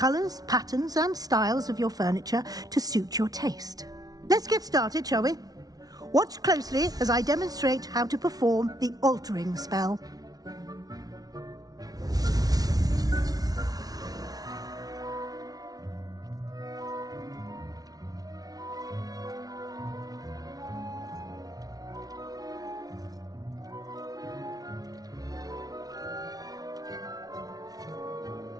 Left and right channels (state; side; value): late; left; 0.18 ms